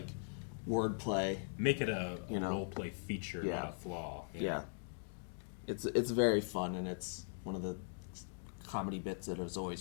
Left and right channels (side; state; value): right; silent; digital silence